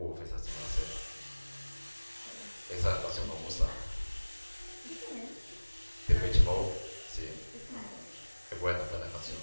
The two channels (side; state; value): both; inverted; correlation -1.00